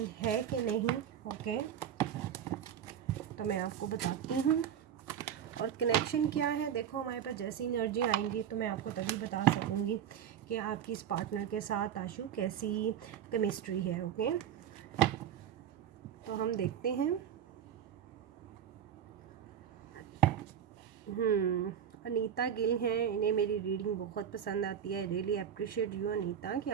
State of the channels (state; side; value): quieter; left; 9.2 dB